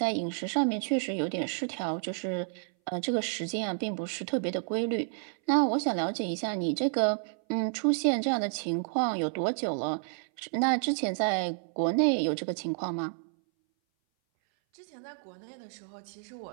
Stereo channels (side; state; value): left; silent; 58 dB below the other